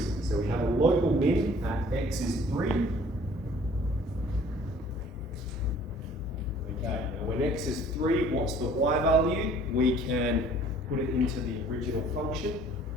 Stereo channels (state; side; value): normal; both; correlation 0.54